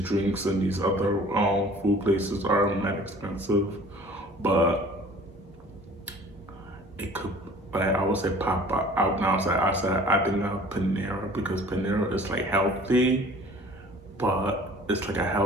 and these other food places are not expensive, but it could. Like I would say pop out now. I think of Panera because Panera is like healthy, but it's like a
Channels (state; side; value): normal; both; correlation 0.48